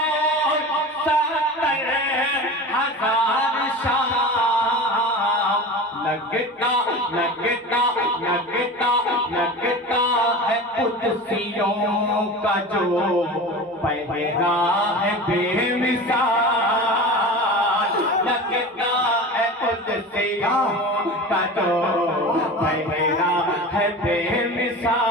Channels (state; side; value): normal; both; correlation 0.32